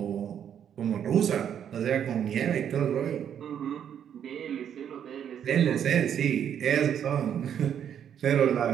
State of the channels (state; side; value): quieter; left; 9.0 dB